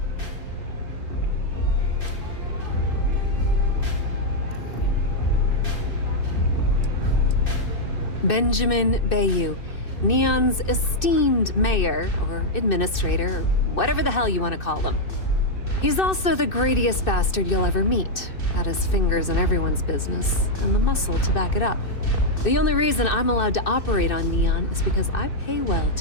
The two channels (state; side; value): late; right; 2.6 ms